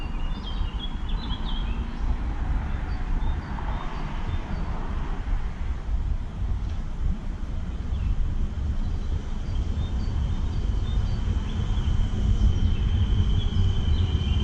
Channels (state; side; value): identical; both; correlation 1.00